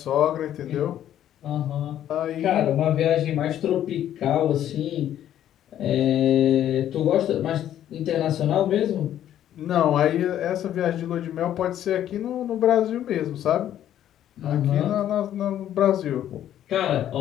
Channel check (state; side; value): quieter; right; 11.3 dB